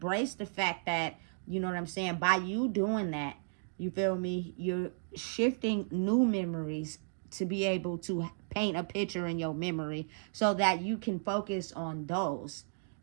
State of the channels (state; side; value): silent; left; digital silence